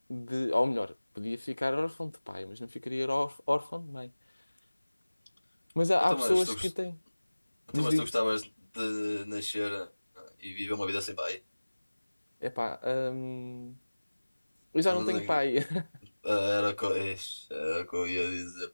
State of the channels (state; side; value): inverted; both; correlation -1.00